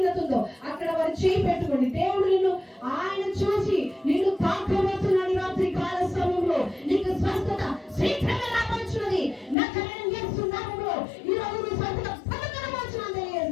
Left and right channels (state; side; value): drops out; right; at 9.6 s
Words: ఉందో అక్కడ వారు చేయి పెట్టుకోండి. దేవుడు నిన్ను ఆయన చూసి నిన్ను తాకబోతున్నాడు. రాత్రి కాల సమయంలో నీకు స్వస్థత శీఘ్రంగా రాబోతున్నది. నజరేయుడైన యేసు నామములో ఈ రోజు నీ స్వస్థత పొందబోతున్నాను